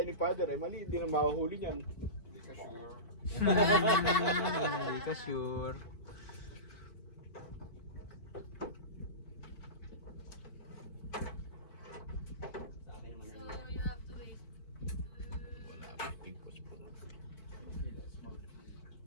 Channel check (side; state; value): right; late; 4.5 ms